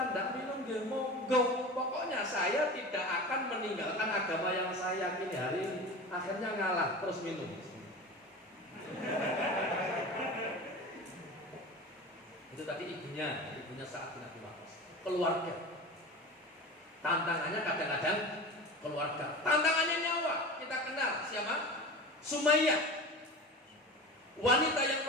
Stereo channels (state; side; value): normal; both; correlation 0.32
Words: tidak minum, ya monggo. Pokoknya saya tidak akan meninggalkan agama yang saya yakini hari ini." Akhirnya ngalah, terus minum. Itu tadi ibunya Sa'ad bin Abi Waqqas. Keluarga. Tantangannya kadang-kadang keluarga. Tantangannya nyawa. Kita kenal siapa? Sumayyah. Wanita yang